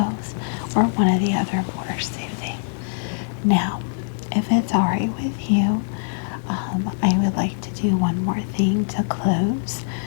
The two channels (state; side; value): silent; right; digital silence